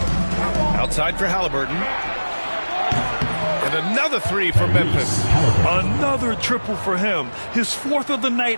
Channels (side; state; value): both; inverted; correlation -1.00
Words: Outside for Halliburton. And another 3 for Memphis. Another triple for him. His 4th of the